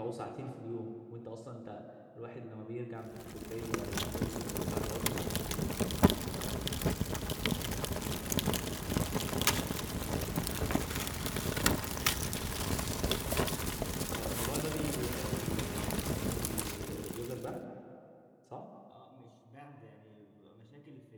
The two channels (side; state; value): both; identical; correlation 1.00